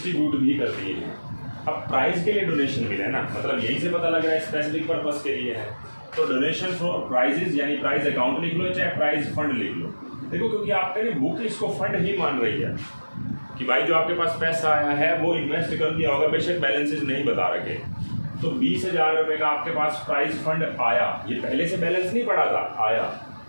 भी कर दिए हैं। अब प्राइस के लिए डोनेशन मिला है ना, मतलब यहीं से पता लग रहा है स्पेसिफिक पर्पस के लिए है, तो डोनेशन फॉर प्राइजेज यानी प्राइस अकाउंट लिख लो, चाहे प्राइस फंड लिख लो। देखो, क्योंकि आपका ये बुक इसको फंड ही मान रही है कि भाई जो आपके पास पैसा आया है वो इन्वेस्ट कर दिया होगा, बेशक बैलेंसेज नहीं बता रखे। तो 20,000 रुपये का आपके पास प्राइस फंड आया, ये पहले से बैलेंस नहीं पड़ा था, आया,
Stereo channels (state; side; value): inverted; both; correlation -1.00